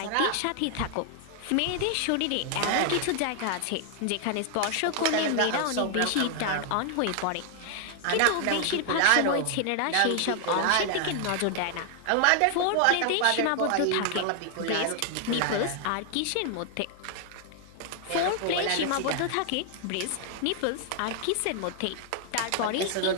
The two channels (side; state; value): both; different; correlation 0.00